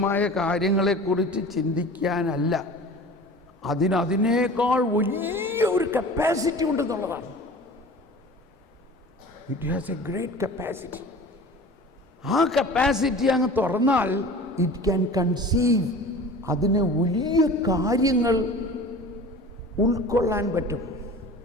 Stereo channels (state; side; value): normal; both; correlation 0.40